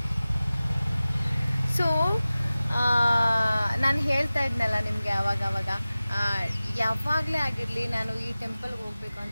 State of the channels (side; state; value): both; inverted; correlation -0.97